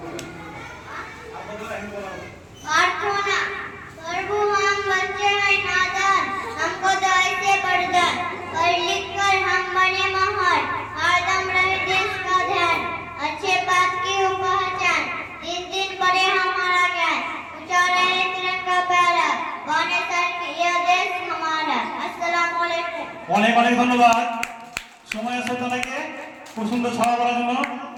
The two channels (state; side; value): identical; both; correlation 1.00